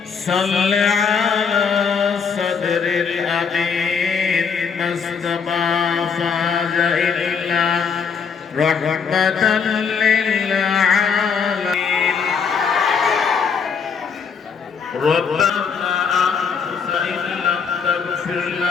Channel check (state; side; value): quieter; right; 6.1 dB